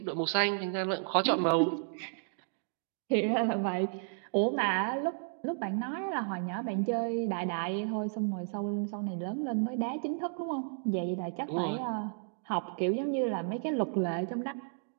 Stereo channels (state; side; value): silent; left; digital silence